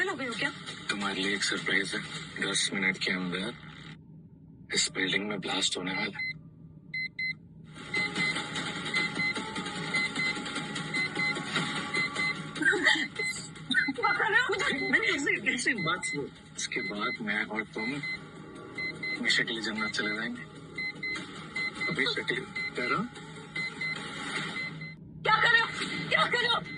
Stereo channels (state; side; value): identical; both; correlation 1.00